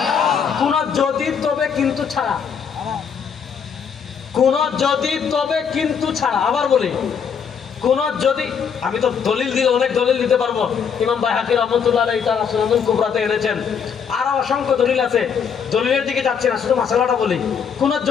কোন যদি তবে কিন্তু ছাড়া, কোন যদি তবে কিন্তু ছাড়া। আবার বলি, কোন যদি, আমি তো দলিল দিলে অনেক দলিল দিতে পারবো, ইমাম বাইহাকী রাহমাতুল্লাহ আলাইহি তাআলা সুনানুল কুবরাতে এনেছেন, আরো অসংখ্য দলিল আছে, দলিলের দিকে যাচ্ছি না, শুধু মাসালাটা বলি। কোন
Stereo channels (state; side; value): quieter; right; 6.9 dB